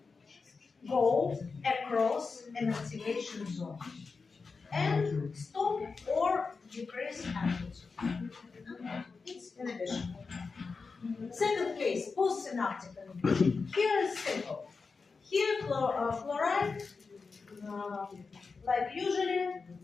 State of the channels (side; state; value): right; quieter; 4.6 dB